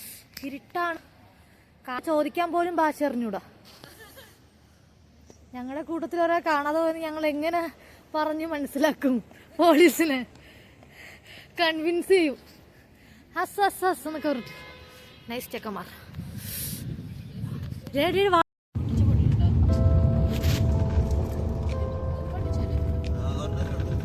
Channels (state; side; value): identical; both; correlation 1.00